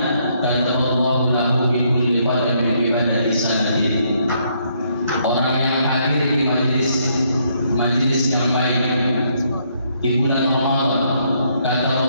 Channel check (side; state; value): both; inverted; correlation -0.72